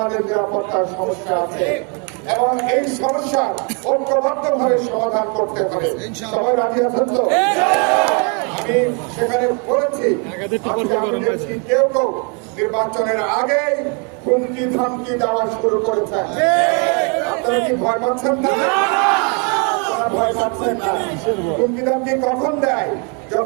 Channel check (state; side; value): quieter; left; 36.4 dB